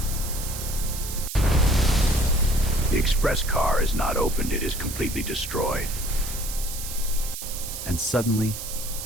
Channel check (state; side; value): noise; right; hiss, 8 dB below the sound